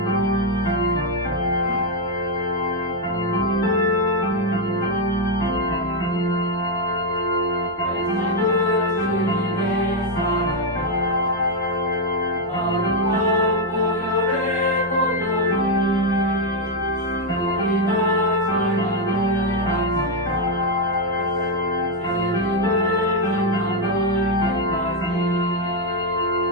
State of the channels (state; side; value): normal; both; correlation 0.03